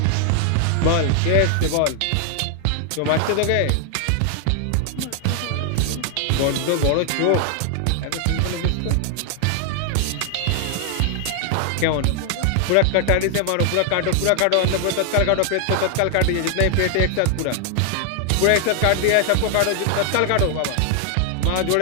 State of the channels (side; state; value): both; different; correlation 0.00